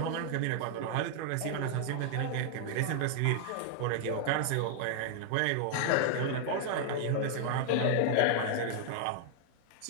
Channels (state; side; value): different; both; correlation 0.00